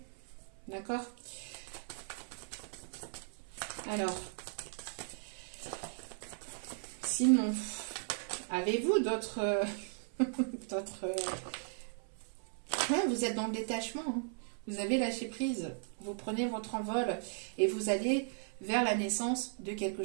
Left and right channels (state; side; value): silent; left; 53 dB below the other